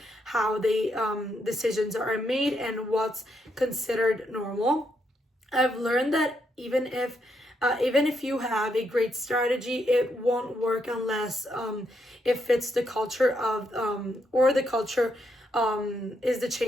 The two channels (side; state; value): both; normal; correlation 0.78